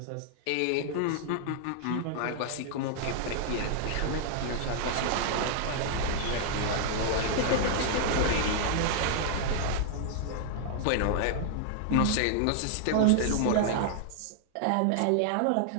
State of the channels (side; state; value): both; different; correlation 0.00